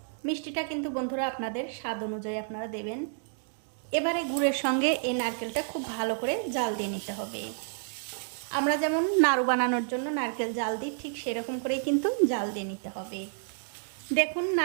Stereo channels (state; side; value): silent; left; digital silence